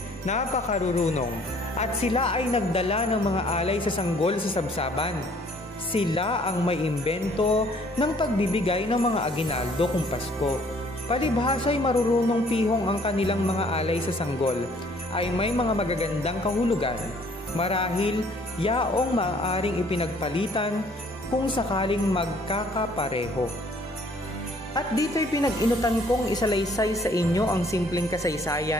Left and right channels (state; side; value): normal; both; correlation 0.59